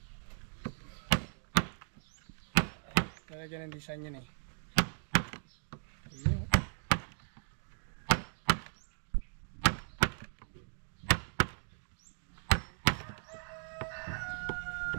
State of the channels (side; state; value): left; silent; 53 dB below the other